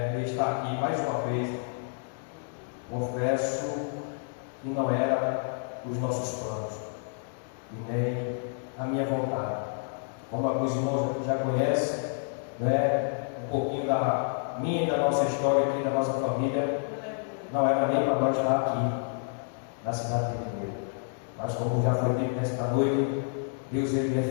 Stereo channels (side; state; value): right; silent; 58 dB below the other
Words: de estar aqui mais uma vez. Confesso que não era os nossos planos e nem a minha vontade. Como alguns irmãos já conhecem, um pouquinho da minha e da nossa história aqui, da nossa família, não era nem para nós estar aqui na cidade de Mineiro. Mas como já foi dito nesta noite, Deus ele é